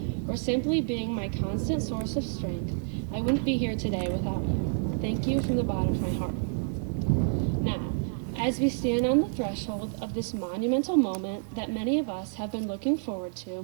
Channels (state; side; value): silent; left; 59 dB below the other